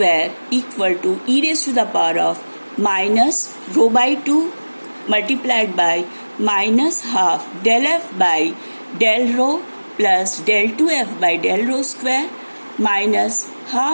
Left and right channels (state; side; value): inverted; both; correlation -1.00